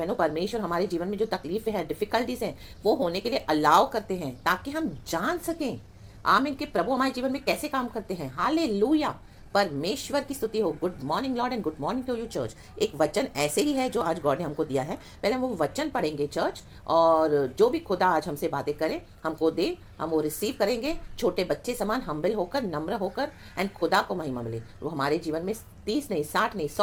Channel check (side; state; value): both; identical; correlation 1.00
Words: परमेश्वर हमारे जीवन में जो तकलीफें हैं, डिफिकल्टीज हैं, वो होने के लिए अलाउ करते हैं ताकि हम जान सकें, आमीन, कि प्रभु हमारे जीवन में कैसे काम करते हैं। हालेलुया। परमेश्वर की स्तुति हो। Good morning lord and good morning to you church. एक वचन ऐसे ही है जो आज गॉड ने हमको दिया है। पहले हम वो वचन पढ़ेंगे चर्च, और जो भी खुदा आज हमसे बातें करे, हमको दे, हम वो रिसीव करेंगे छोटे बच्चे समान, हम्बल होकर, नम्र होकर, एंड खुदा को महिमा मिले। वो हमारे जीवन में 30 नहीं, 60 नहीं,